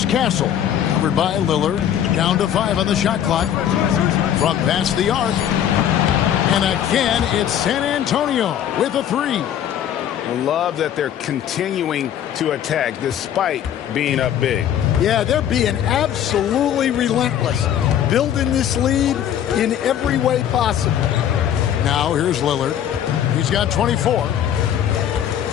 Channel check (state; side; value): quieter; right; 10.1 dB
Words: Castle. Covered by Lillard. Down to 5 on the shot clock. From past the arc. And again, it's San Antonio with a 3. I love that they're continuing to attack despite being up big. Yeah, they're being absolutely relentless. Building this lead in every way possible. Now here's Lillard. He's got 24.